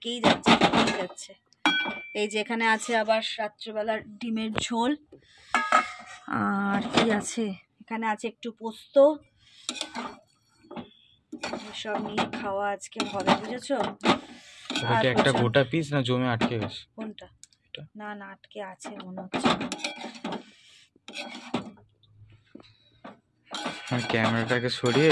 যাচ্ছে। এই যে এখানে আছে আবার রাত্রেবেলার ডিমের ঝোল, আর কি আছে এখানে, আছে একটু পোস্ত, এসব নিয়ে খাওয়া আজকে হবে, বুঝেছো? এটা একটা গোটা পিস না জমে আটকে গেছে? কোনটা? এটা না না, আটকে আছে মনে হচ্ছে। আমি ক্যামেরাটাকে সরিয়ে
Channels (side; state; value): both; identical; correlation 1.00